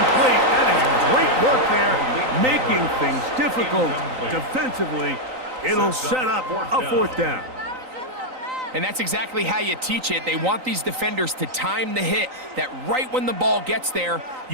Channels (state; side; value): late; left; 3.9 ms